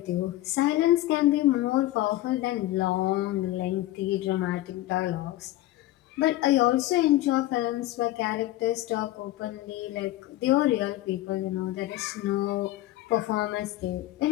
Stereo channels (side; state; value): right; quieter; 15.9 dB